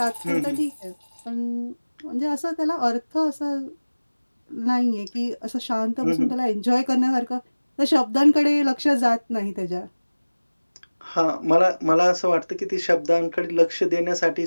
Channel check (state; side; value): inverted; both; correlation -1.00